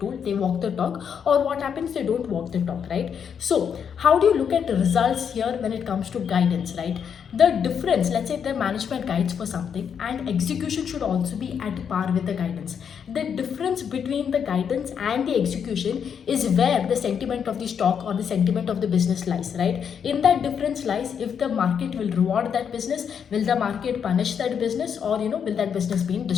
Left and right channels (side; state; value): right; quieter; 7.5 dB